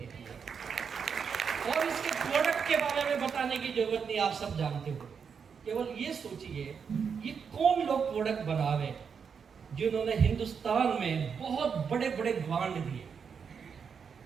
है। और इसके प्रोडक्ट के बारे में बताने की जरूरत नहीं, आप सब जानते हो। केवल ये सोचिए ये कौन लोग प्रोडक्ट बना रहे जिन्होंने हिंदुस्तान में बहुत बड़े बड़े ब्रांड दिए।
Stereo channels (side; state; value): left; quieter; 6.4 dB